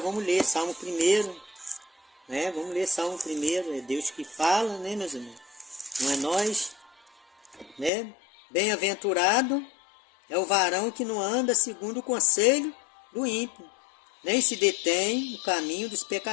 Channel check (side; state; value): right; drops out; at 7.9 s